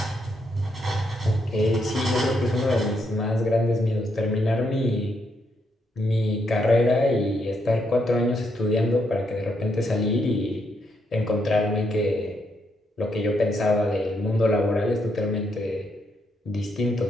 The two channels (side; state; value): both; normal; correlation 0.77